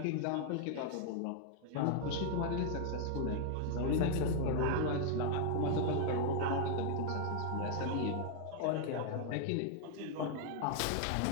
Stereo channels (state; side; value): different; both; correlation 0.00